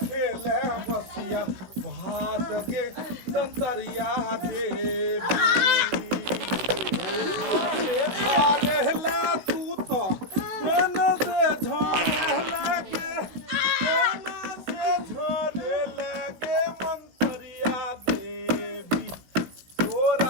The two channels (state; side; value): late; left; 16 ms